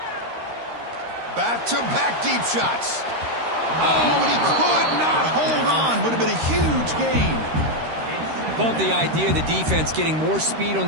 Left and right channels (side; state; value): left; late; 13 ms